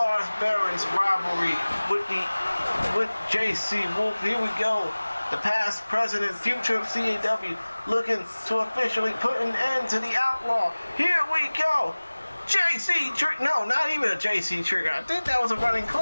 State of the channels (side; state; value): both; inverted; correlation -1.00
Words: Behrens' rivalry with JC Wolf? Here we go. The past, present, and future of CAW looking to officially put an end to the outlaw. Here we go. JC Trigger. No, not even a JC Trigger. I think that was a running